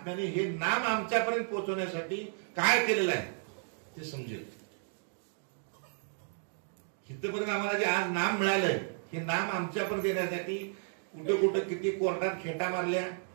हे नाम आमच्यापर्यंत पोहोचवण्यासाठी काय केलेलं आहे ते समजेल. इथपर्यंत आम्हाला जे आज नाम मिळालंय, हे नाम आमच्यापर्यंत येण्यासाठी कुठे कुठे किती कोर्टात खेटा मारल्या,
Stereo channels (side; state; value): left; silent; 56 dB below the other